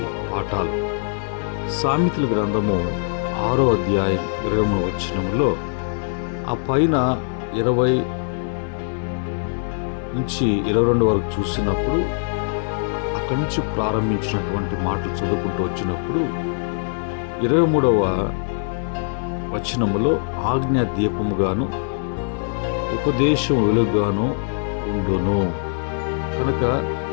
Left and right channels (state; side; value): silent; right; digital silence